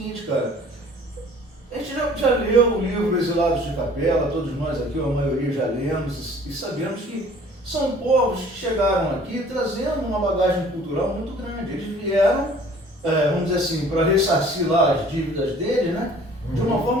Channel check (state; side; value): normal; both; correlation 0.51